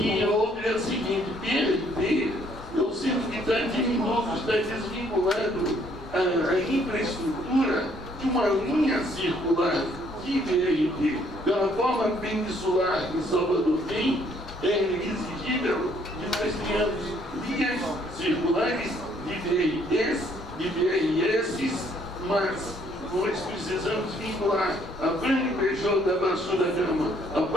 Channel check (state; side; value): noise; left; rumble, 23 dB below the sound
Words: outra é a seguinte: BRT, eu sinto que está diminuto, está desvinculado a infraestrutura de uma linha circular de BRT. Pela forma peninsular que Salvador tem, é exigível que nós tenhamos linhas circulares de BRTs, de BRS, mas nós precisamos vincular a Franco Peixoto da Baixo da Gama, a